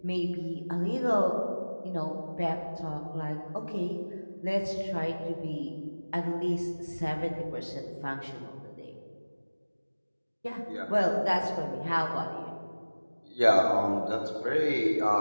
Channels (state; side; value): inverted; both; correlation -1.00